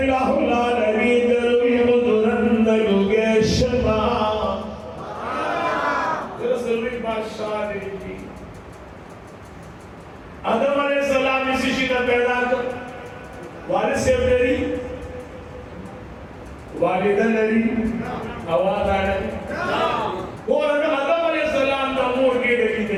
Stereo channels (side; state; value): both; identical; correlation 1.00